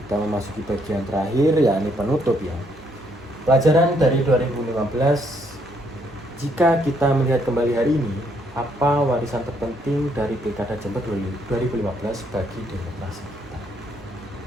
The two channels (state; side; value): normal; both; correlation 0.71